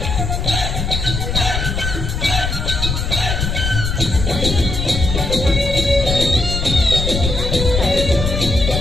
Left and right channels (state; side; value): noise; left; rumble, 2 dB below the sound